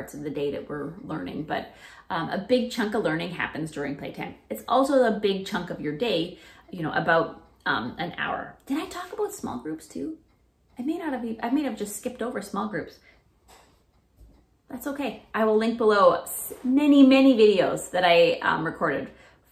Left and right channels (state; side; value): identical; both; correlation 1.00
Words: of the day that we're learning, but a big chunk of learning happens during playtime. It's also a big chunk of your day, you know, about an hour. Did I talk about small groups too? I may have just skipped over small groups. That's okay. I will link below many, many videos that I recorded